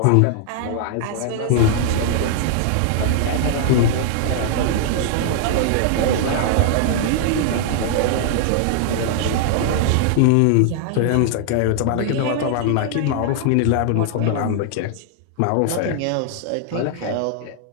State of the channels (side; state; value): both; different; correlation -0.01